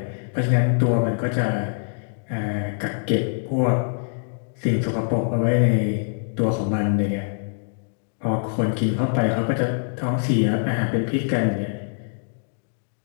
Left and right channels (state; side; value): silent; right; digital silence